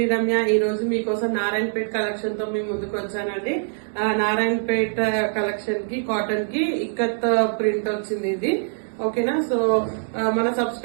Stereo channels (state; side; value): silent; left; digital silence